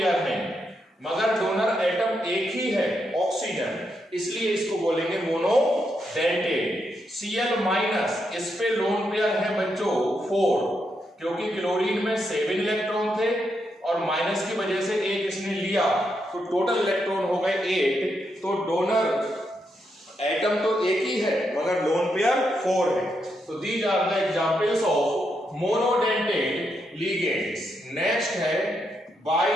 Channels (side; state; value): both; normal; correlation 0.81